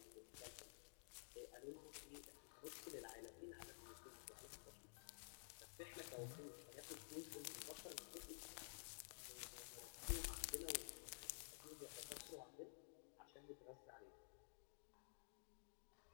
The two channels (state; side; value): silent; right; digital silence